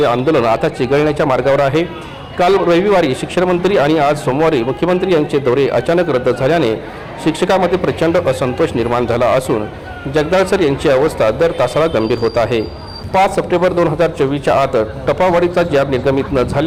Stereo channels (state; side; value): identical; both; correlation 1.00